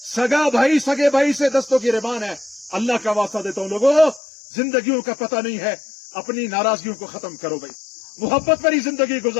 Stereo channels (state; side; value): drops out; right; at 4.2 s